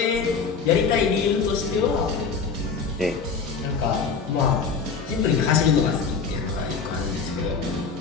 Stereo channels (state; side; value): quieter; right; 5.4 dB